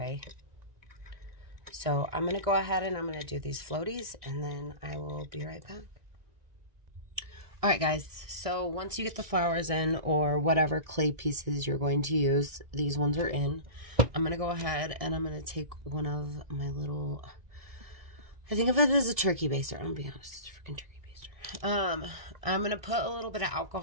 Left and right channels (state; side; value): late; left; 1.9 ms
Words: So I'm going to go ahead and I'm going to do these floaties, and then I will be right back. Alright guys, so once you get the flowers in, or whatever clay pieces you're going to use, these ones are in. I'm going to go ahead and I'm going to take one of my little, I think of it as a turkey baster. I'm going to be honest, it's a freaking turkey baster. I'm going to put a little bit of